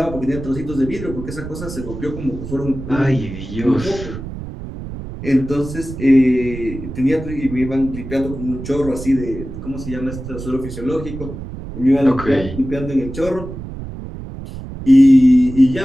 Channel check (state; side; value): noise; right; rumble, 10 dB below the sound